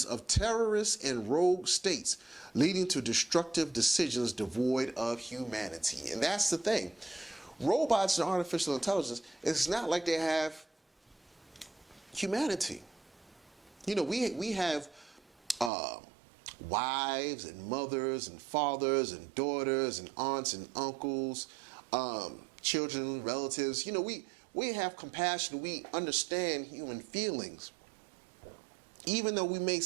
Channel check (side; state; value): left; drops out; at 15.7 s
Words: of terrorists and rogue states, leading to destructive decisions devoid of humanity. And that's the thing. Robots and artificial intelligence, it's not like they have humanity. You know, we have wives and mothers and fathers and daughters and aunts and uncles, children, relatives. You know, we have compassion. We understand human feelings. Even though we may